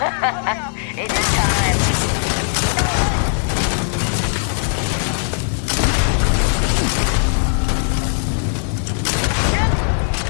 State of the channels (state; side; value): silent; right; 58 dB below the other